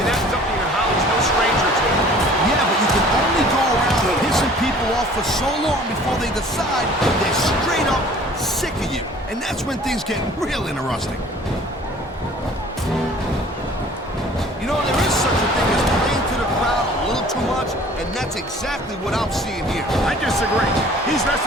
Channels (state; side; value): normal; both; correlation 0.50